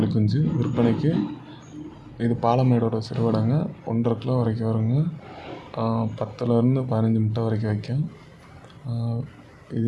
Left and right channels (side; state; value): both; identical; correlation 1.00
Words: குஞ்சு விற்பனைக்கு. இது பாலமேடோட சிறுவிடைங்க. 1.5 கிலோ வரைக்கும் வருங்க. 10லேருந்து 15 முட்டை வரைக்கும் வைக்கும்.